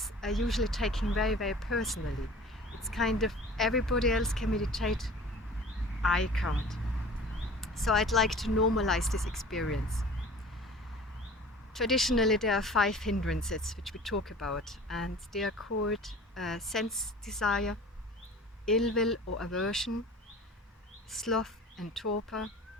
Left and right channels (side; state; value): both; normal; correlation 0.43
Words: are usually taken very, very personally. It's kind of everybody else can meditate, I can't. So I'd like to normalize this experience. Traditionally, there are 5 hindrances which we talk about, and they are called sense desire, ill will or aversion, sloth and torpor,